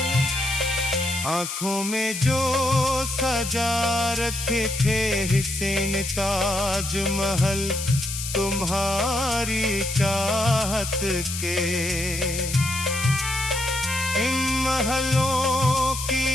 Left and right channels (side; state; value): left; noise; hiss, 6 dB below the sound